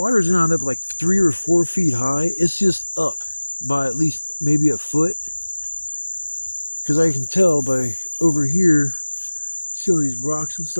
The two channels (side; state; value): both; inverted; correlation -1.00